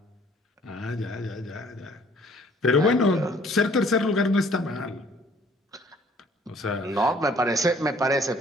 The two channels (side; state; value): both; normal; correlation 0.58